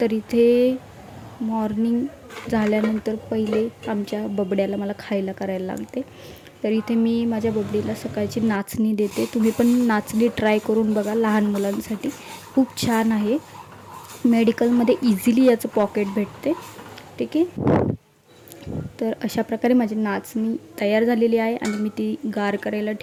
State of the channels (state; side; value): identical; both; correlation 1.00